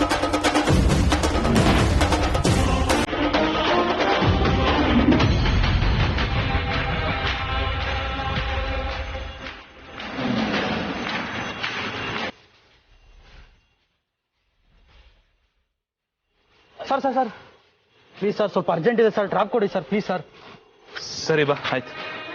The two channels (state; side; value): identical; both; correlation 1.00